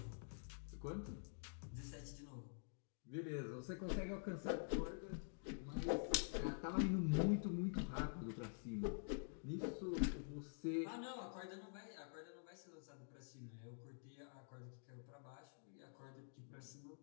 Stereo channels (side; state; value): right; silent; digital silence